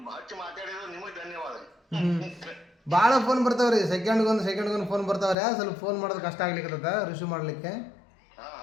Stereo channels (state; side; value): drops out; right; at 5.4 s